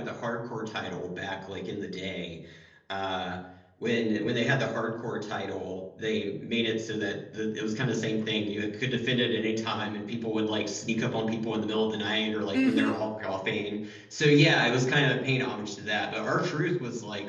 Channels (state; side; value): identical; both; correlation 1.00